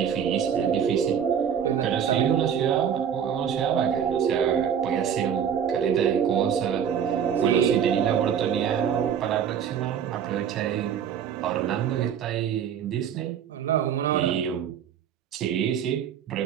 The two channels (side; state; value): left; quieter; 8.3 dB